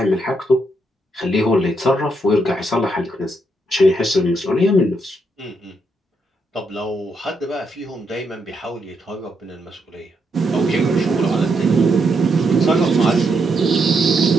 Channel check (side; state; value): both; normal; correlation 0.79